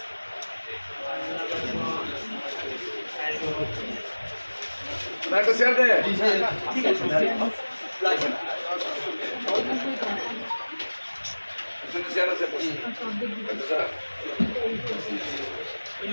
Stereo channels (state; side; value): inverted; both; correlation -1.00